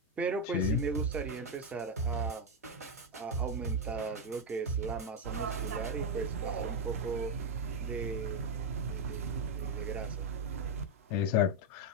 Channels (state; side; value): normal; both; correlation 0.05